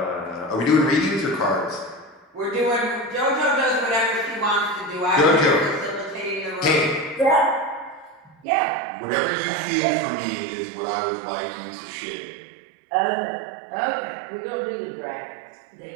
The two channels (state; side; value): drops out; left; at 8.5 s